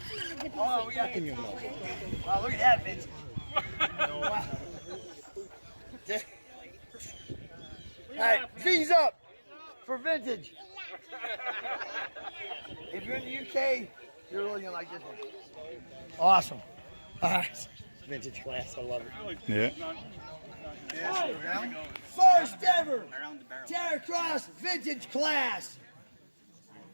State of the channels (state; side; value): inverted; both; correlation -1.00